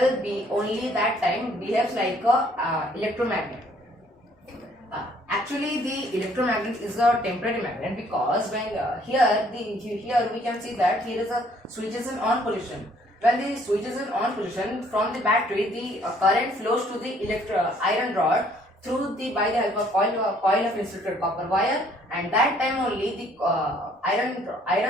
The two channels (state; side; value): normal; both; correlation 0.62